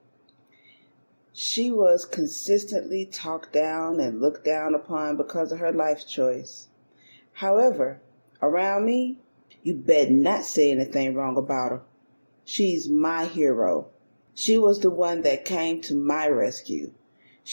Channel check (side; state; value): both; inverted; correlation -1.00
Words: She was consistently talked down and looked down upon because of her life choice. However, around me, you better not say anything wrong about her. She's my hero. She was the one that came to my rescue.